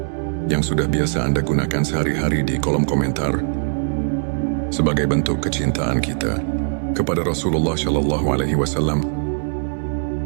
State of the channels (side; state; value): left; silent; digital silence